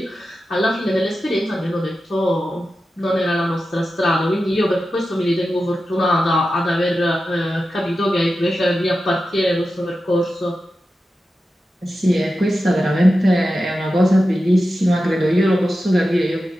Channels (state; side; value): normal; both; correlation 0.92